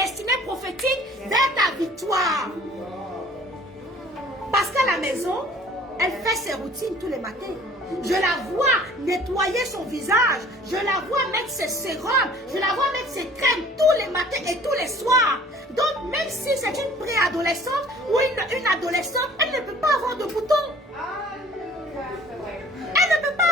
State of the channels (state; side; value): normal; both; correlation 0.52